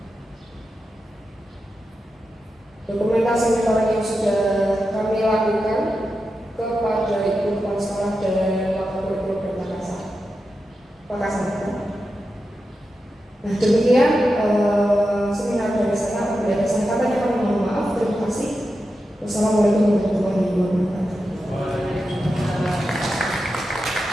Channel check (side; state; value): both; normal; correlation 0.90